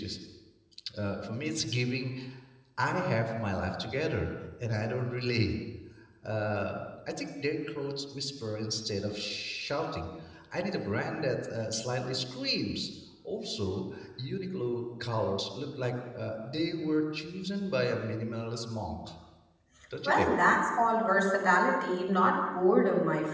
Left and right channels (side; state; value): both; identical; correlation 1.00